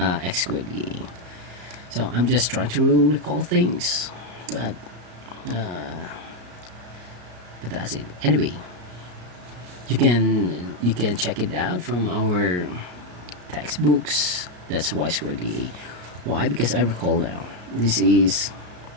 squared dA. So I'm just trying to recall things, but uh, that's it. Anyway, you can check it out from our textbooks. That's y squared dA. Why? Because I recall now. This is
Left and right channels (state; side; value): late; left; 34 ms